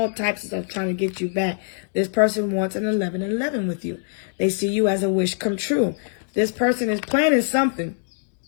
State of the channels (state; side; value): silent; right; digital silence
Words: types of stuff trying to get you back. This person wants an 11-11 with you. They see you as a wish come true. This person is planning something.